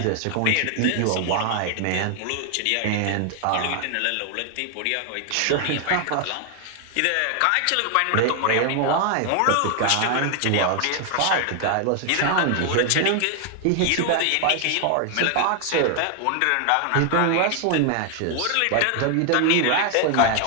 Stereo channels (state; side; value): different; both; correlation 0.00